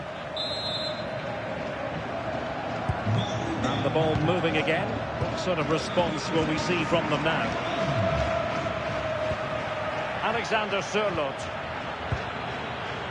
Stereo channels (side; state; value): both; identical; correlation 1.00